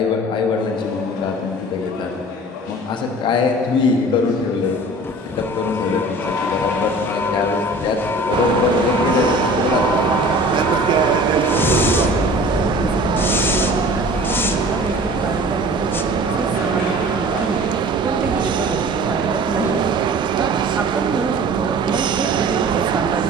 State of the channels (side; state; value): both; normal; correlation 0.44